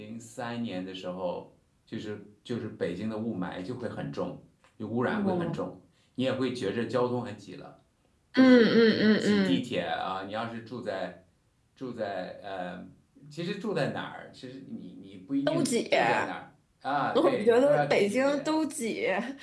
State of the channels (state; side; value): identical; both; correlation 1.00